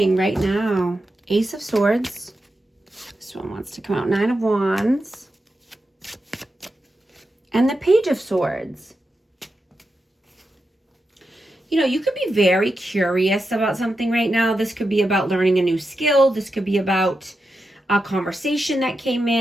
right now? Ace of Swords. This one wants to come out. 9 of Wands. And the Page of Swords. You know, you could be very curious about something right now. This could be about learning a new skill. This could be about a conversation that came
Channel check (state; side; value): normal; both; correlation 0.88